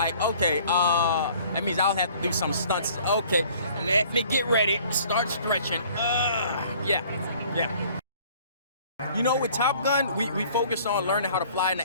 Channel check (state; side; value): inverted; both; correlation -0.54